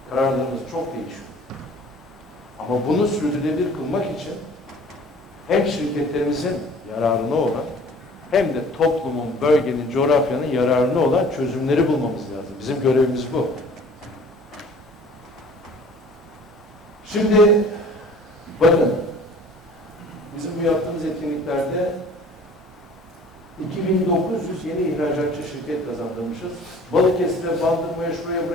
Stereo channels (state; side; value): normal; both; correlation 0.50